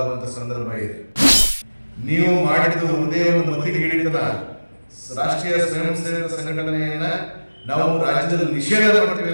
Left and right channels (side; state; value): both; inverted; correlation -1.00